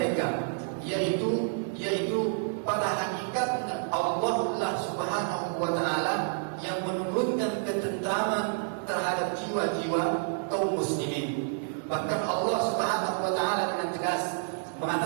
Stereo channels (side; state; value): left; silent; 58 dB below the other